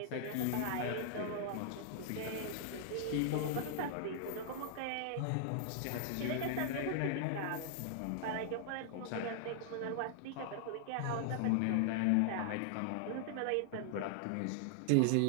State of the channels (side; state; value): both; different; correlation -0.01